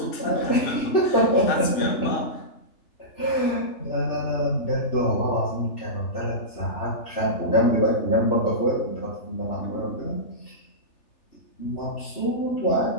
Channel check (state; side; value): late; right; 3.3 ms